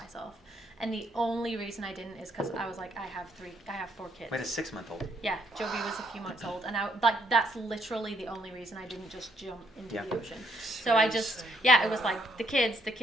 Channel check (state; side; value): normal; both; correlation 0.71